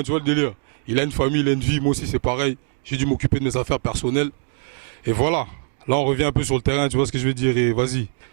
tu vois le délire. Il a une famille, il a une vie, moi aussi c'est pareil. J'ai dû m'occuper de mes affaires personnelles. Et voilà. Là on revient un peu sur le terrain, tu vois ce que je veux dire. Et vas-y,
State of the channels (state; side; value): silent; left; 60 dB below the other